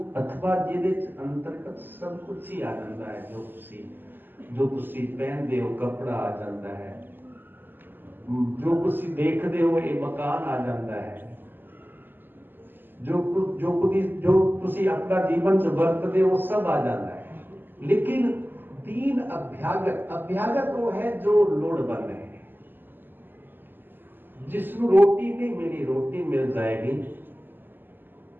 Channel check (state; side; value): late; left; 0.093 ms